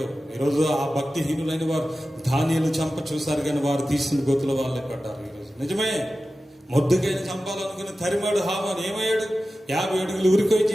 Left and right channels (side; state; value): both; normal; correlation 0.94